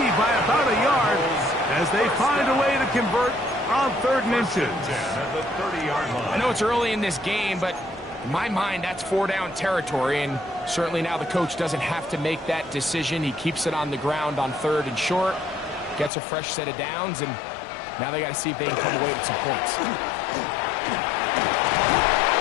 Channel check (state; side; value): drops out; right; at 16.1 s